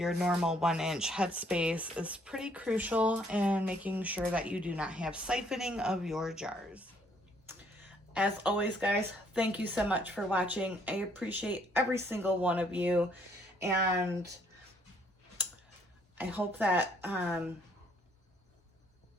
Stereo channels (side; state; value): both; normal; correlation 0.66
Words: normal 1-inch headspace is pretty crucial in making sure that you do not have siphoning of your jars. As always, guys, thank you so much for watching. I appreciate every single one of you, and I hope that